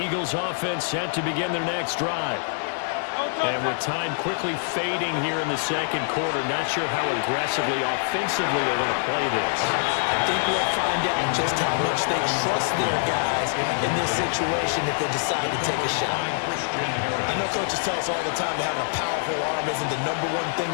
offense set to begin their next drive. And with time quickly fading here in the second quarter, not sure how aggressively, offensively they're going to play this. I think we'll find out just how much they trust their guys in this situation if they decide to take a shot. I know coaches tell us all the time that having a powerful arm isn't the #1 thing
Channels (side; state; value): right; silent; digital silence